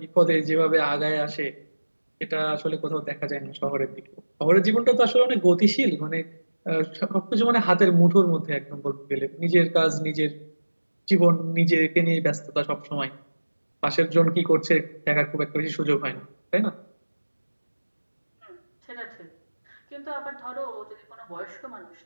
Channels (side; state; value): both; inverted; correlation -1.00